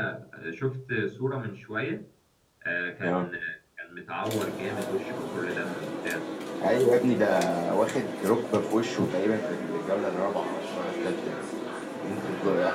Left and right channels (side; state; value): both; identical; correlation 1.00